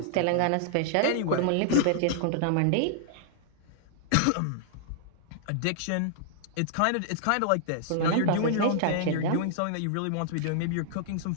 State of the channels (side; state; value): both; different; correlation -0.01